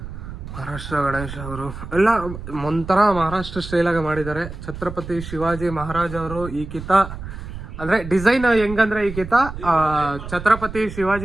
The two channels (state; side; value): noise; right; rumble, 10 dB below the sound